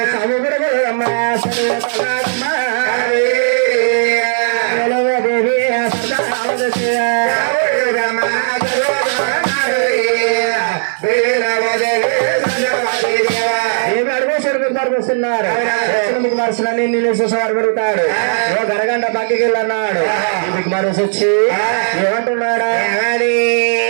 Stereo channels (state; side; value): silent; left; digital silence